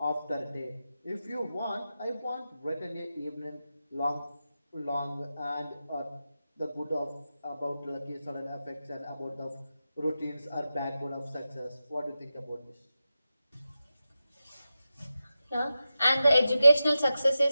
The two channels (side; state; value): both; inverted; correlation -0.91